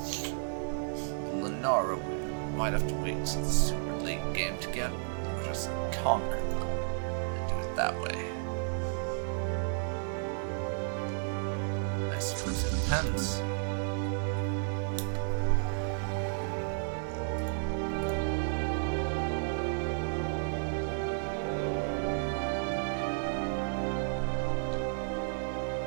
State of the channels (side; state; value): left; silent; digital silence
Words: Lenara, we might have to wait until the super late game to get, or just conquer them and do it that way. I suppose it depends.